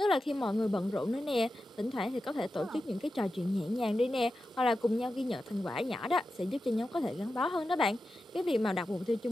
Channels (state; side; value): normal; both; correlation 0.91